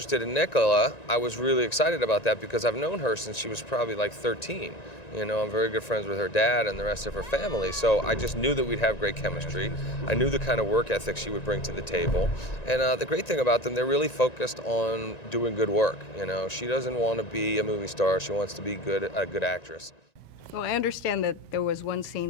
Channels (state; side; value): late; right; 1.9 ms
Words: in Nicola, I was really excited about that because I've known her since she was probably like 13. You know, I'm very good friends with her dad and the rest of her family, so I just knew that we'd have great chemistry. I knew the kind of work ethic she would bring to the table. And the great thing about them, they're really focused on doing good work. You know, she doesn't want to be a movie star, she wants to be a good actress. Well, I understand that there was one